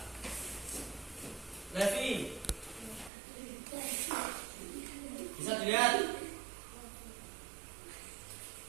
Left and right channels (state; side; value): drops out; left; at 3.1 s